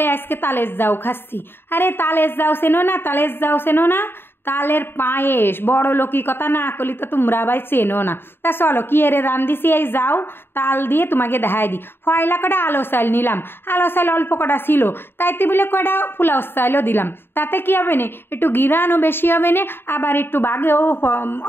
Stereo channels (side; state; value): right; late; 0.11 ms